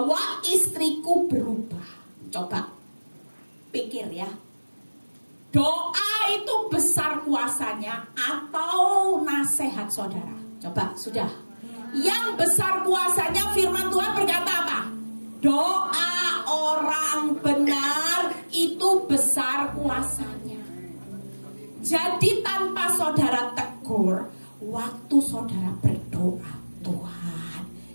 istriku berubah. Coba pikir ya, doa itu besar kuasanya atau nasihat saudara? Coba, sudah. Yang besar kuasanya firman Tuhan berkata apa? Doa orang benar itu besar kuasanya. Jadi saudara berdoa, Tuhan,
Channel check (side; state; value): both; inverted; correlation -1.00